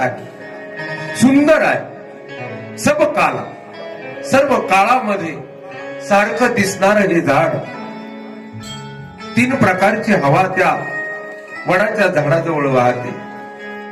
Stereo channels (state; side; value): identical; both; correlation 1.00